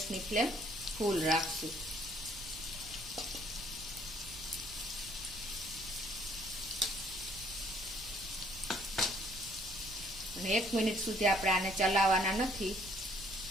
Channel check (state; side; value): noise; right; rumble, 16 dB below the sound